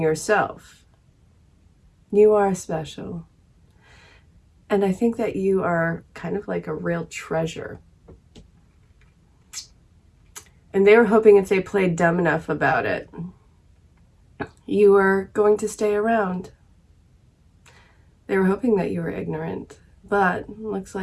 You are special. And I think that you are kind of like a real treasure. And they were hoping if they played dumb enough about it, you were going to stay around. They were hoping that you were ignorant. But it looks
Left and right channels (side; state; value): both; identical; correlation 1.00